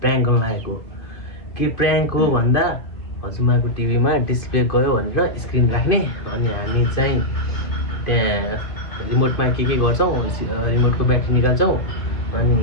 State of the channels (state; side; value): late; right; 2.5 ms